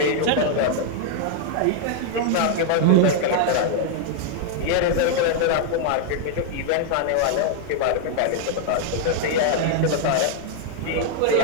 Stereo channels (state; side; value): different; both; correlation 0.00